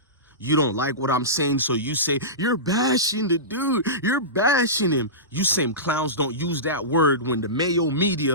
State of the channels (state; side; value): normal; both; correlation -0.20